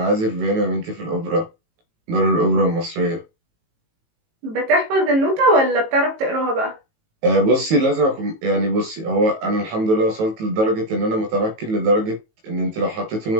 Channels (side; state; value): left; late; 18 ms